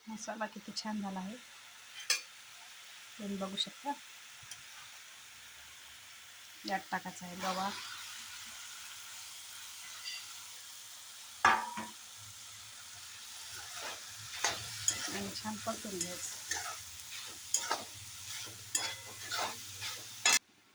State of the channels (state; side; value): identical; both; correlation 1.00